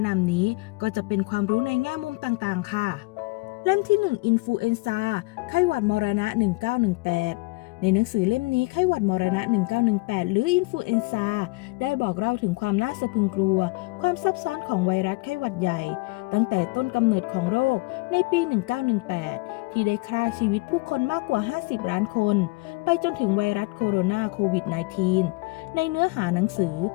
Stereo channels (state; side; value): quieter; right; 25.2 dB